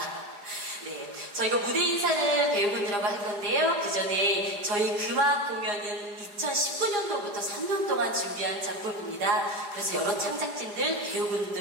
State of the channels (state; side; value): late; left; 4.9 ms